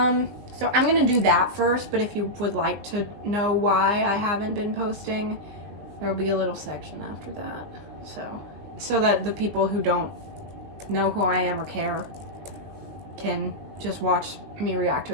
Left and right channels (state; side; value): late; left; 20 ms